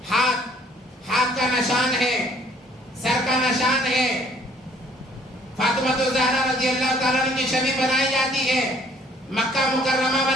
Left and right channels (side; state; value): both; normal; correlation 0.59